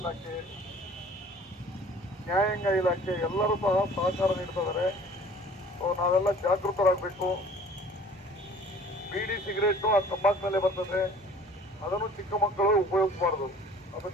ನ್ಯಾಯಾಂಗ ಇಲಾಖೆ ಎಲ್ಲರೂ ಸಹ ಸಹಕಾರ ನೀಡ್ತಿದ್ದಾರೆ. ಸೊ ನಾವೆಲ್ಲ ಜಾಗೃತರಾಗಬೇಕು. ಬೀಡಿ, ಸಿಗರೇಟು ಆ ತಂಬಾಕಿನಲ್ಲೇ ಬರ್ತದೆ. ಅದನ್ನು ಚಿಕ್ಕ ಮಕ್ಕಳು ಉಪಯೋಗಿಸಬಾರ್ದು, ಅದು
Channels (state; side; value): normal; both; correlation 0.49